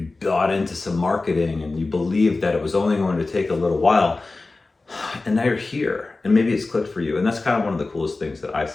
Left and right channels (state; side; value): quieter; right; 3.5 dB